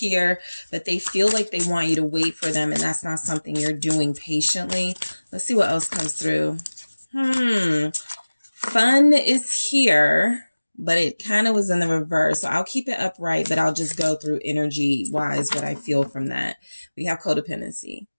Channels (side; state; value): both; inverted; correlation -1.00